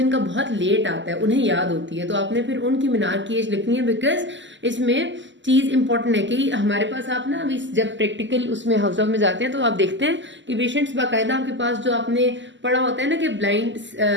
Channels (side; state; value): left; late; 0.54 ms